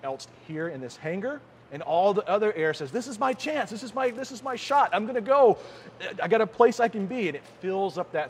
else here in this hangar. And all the other air says, this is my chance, this is my shot, I'm gonna go. I got a place I can be, and it fills up that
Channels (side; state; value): both; identical; correlation 1.00